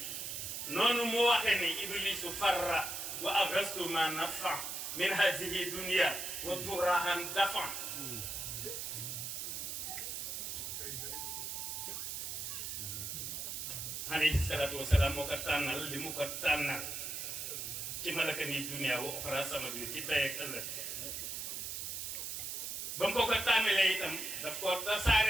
noonu mu waxe ni iblisu farra wa agastu ma nafa min hazihi dunia wa turahan dafa alayhi salaatu wasalaam moo ko tànnal li mu ko tànnal ci malaka ni dunia wa oxra sama bi ci tey ak ëllëg ba mu ko tànnalee itam daf ko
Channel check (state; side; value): noise; right; hiss, 4 dB below the sound